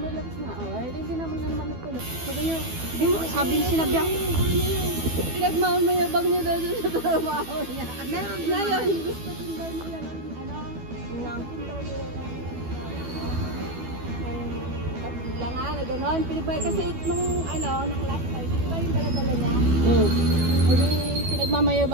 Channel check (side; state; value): left; late; 12 ms